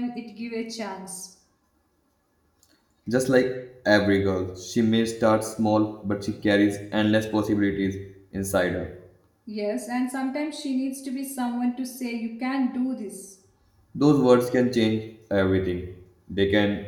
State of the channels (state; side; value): identical; both; correlation 1.00